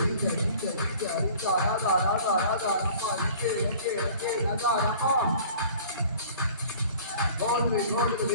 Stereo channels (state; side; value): inverted; both; correlation -0.47